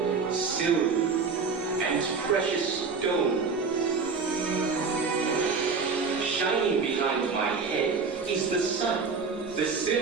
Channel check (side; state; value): left; quieter; 4.9 dB